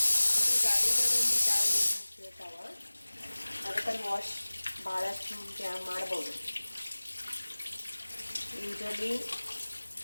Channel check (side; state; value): both; inverted; correlation -1.00